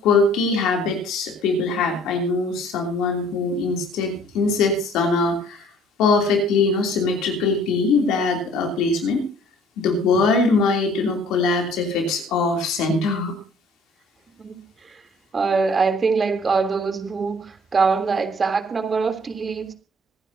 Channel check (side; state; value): both; normal; correlation 0.54